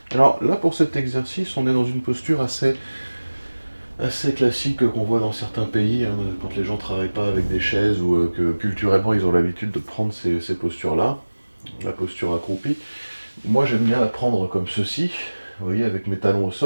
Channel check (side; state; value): both; inverted; correlation -1.00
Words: Alors là, pour cet exercice, on est dans une posture assez classique qu'on voit dans certains pays, hein, quand les gens ne travaillent pas avec des chaises ou que culturellement ils ont l'habitude de prendre ces postures-là, la posture accroupie. Moi, j'aime bien la prendre comme ceci, vous voyez, avec mes talons au